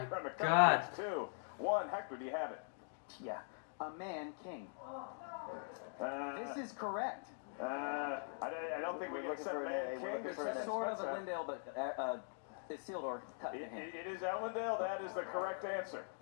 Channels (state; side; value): silent; right; digital silence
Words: to God. come. 2, 1. Hector, do you have it? Yeah. A man king. This This is correct. I don't think we can accept for an Man A. We're King. looking This for an is A. Sword of Smets. Elendil, but Isildur cut the hand. It is Elendil. That is the correct answer.